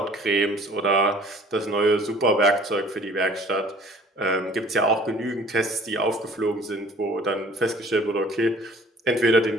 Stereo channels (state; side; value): normal; both; correlation 0.51